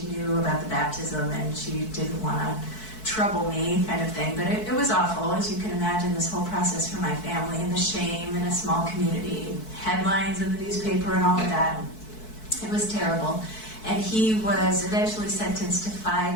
knew about the baptism and she didn't want to trouble me kind of thing, but it was awful, as you can imagine, this whole process for my family and the shame in a small community, headlines in the newspaper and all of that. It was terrible. And he was eventually sentenced to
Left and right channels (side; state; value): right; late; 4.6 ms